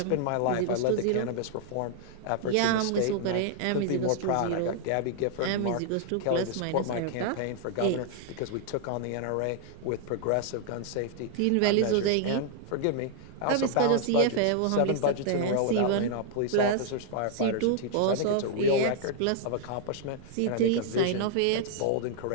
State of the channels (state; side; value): different; both; correlation 0.00